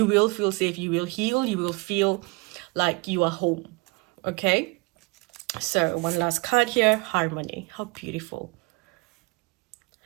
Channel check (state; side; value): quieter; left; 26.8 dB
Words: will feel safe. You will heal. You will feel like you are home. Okay. So one last card here. Harmony. How beautiful.